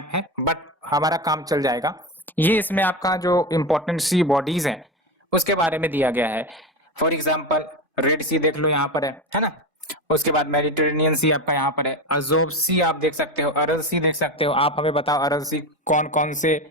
है बट हमारा काम चल जाएगा। ये इसमें आपका जो इंपॉर्टेंट सी बॉडीज हैं उसके बारे में दिया गया है। फॉर एग्जाम्पल रेड सी देख लो यहाँ पर है ना। उसके बाद मेडिटेरेनियन सी आपका यहाँ पर है, अजोब सी आप देख सकते हो, अरल सी देख सकते हो। आप हमें बताओ अरल सी कौन कौन से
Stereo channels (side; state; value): both; normal; correlation 0.20